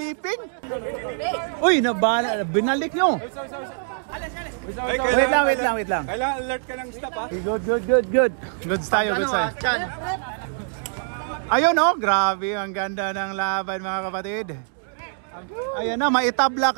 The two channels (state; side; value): silent; left; digital silence